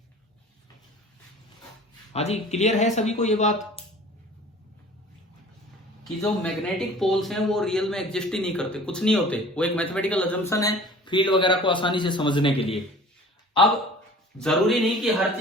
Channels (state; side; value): normal; both; correlation 0.45